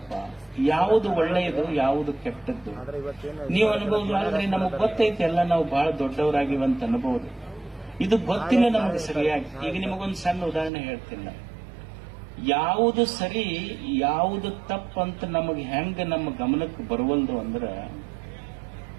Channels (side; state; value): left; drops out; at 10.7 s